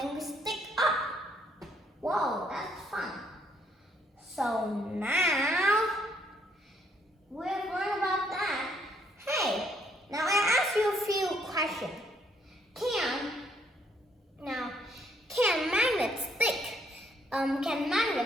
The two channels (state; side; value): normal; both; correlation 0.69